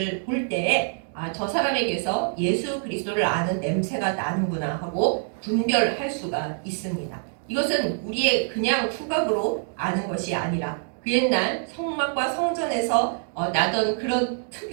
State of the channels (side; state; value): left; silent; 62 dB below the other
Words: 볼 때에 저 사람에게서 예수 그리스도를 아는 냄새가 나는구나 하고 분별할 수가 있습니다. 이것은 우리의 그냥 후각으로 아는 것이 아니라 그 옛날 성막과 성전에서 나던 그런